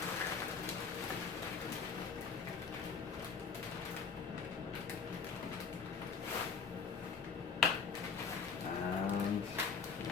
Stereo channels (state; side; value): quieter; right; 5.7 dB